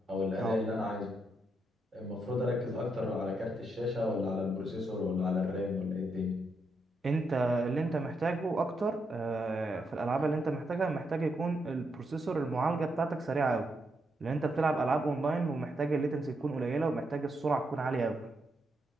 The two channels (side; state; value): both; normal; correlation 0.81